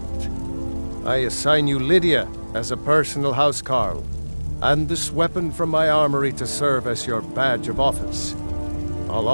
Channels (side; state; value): both; inverted; correlation -1.00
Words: I assign you Lydia as a personal housecarl, and this weapon from my armory to serve as your badge of office. I'll